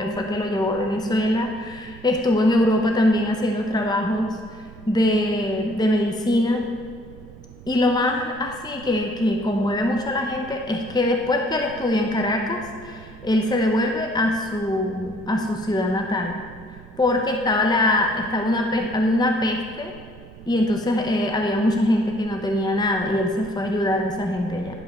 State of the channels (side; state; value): right; noise; rumble, 19 dB below the sound